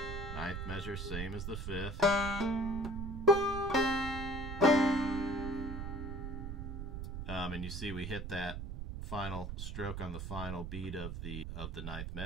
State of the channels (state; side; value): noise; right; rumble, 5 dB below the sound